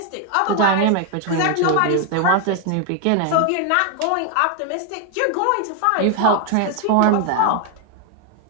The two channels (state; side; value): different; both; correlation 0.01